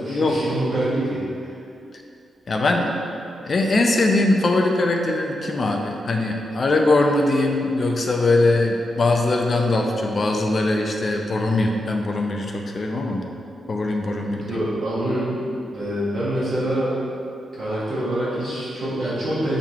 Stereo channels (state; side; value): normal; both; correlation 0.86